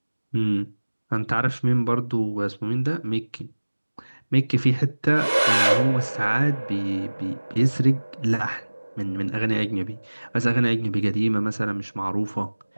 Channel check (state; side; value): inverted; both; correlation -1.00